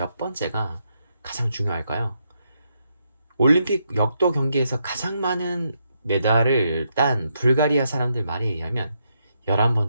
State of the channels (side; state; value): both; inverted; correlation -0.79